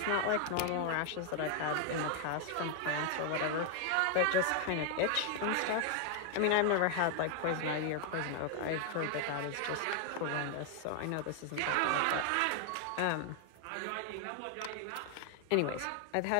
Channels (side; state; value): both; different; correlation 0.00